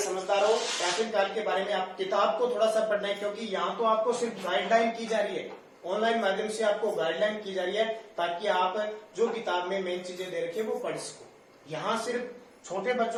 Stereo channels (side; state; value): both; identical; correlation 1.00